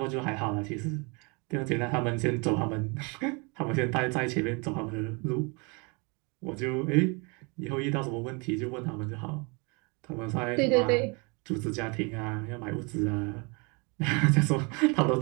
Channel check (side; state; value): left; quieter; 31.1 dB